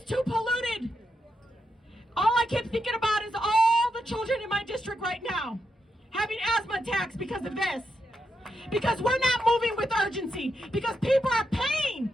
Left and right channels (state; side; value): normal; both; correlation 0.83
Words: too polluted. All I keep thinking about is all the children in my district right now having asthma attacks because of this. Because we're not moving with urgency. Because people are paying